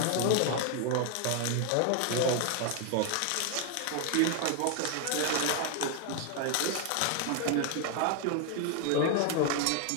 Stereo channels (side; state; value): both; different; correlation 0.00